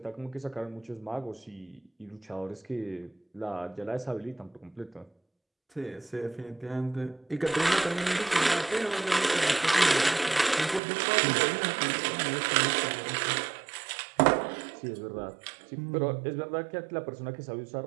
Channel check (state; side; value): drops out; left; at 10.8 s